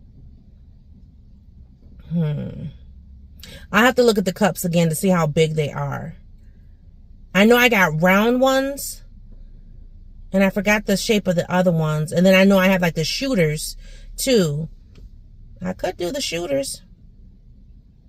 I have to look at the cups again to see how big they are. I know I got round ones, and I forgot the shape of the other ones. And then I know I have like the shooters too. I could do the shooters.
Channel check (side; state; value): both; identical; correlation 1.00